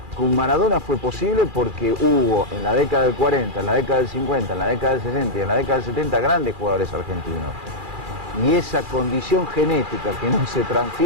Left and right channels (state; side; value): late; left; 2.4 ms